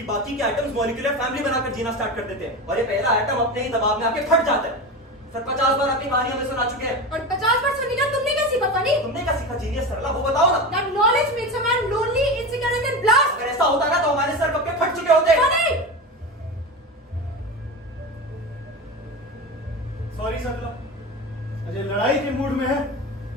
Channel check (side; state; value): both; normal; correlation 0.24